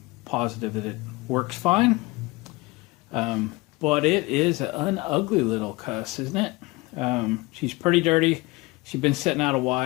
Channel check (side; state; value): right; quieter; 22.9 dB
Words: positive that it works fine. But it is an ugly little cuss, isn't it? She's pretty dirty. She's been sitting out a